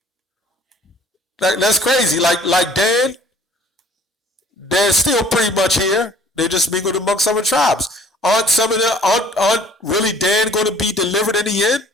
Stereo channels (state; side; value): normal; both; correlation 0.54